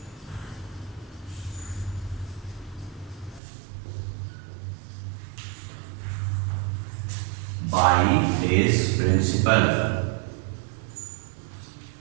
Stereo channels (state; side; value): drops out; left; at 3.4 s